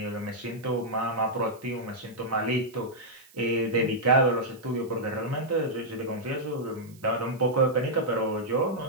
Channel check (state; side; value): noise; right; hiss, 26 dB below the sound